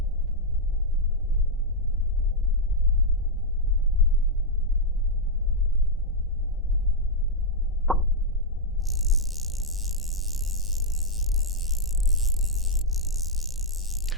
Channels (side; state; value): both; normal; correlation -0.03